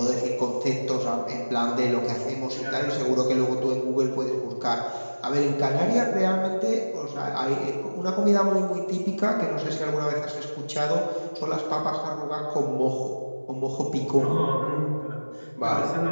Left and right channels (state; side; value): inverted; both; correlation -1.00